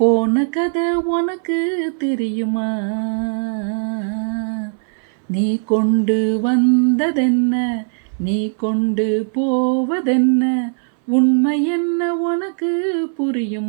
கதை உனக்கு தெரியுமா? நீ கொண்டு வந்ததென்ன, நீ கொண்டு போவதென்ன, உண்மை என்ன உனக்கு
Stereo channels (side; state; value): left; silent; 67 dB below the other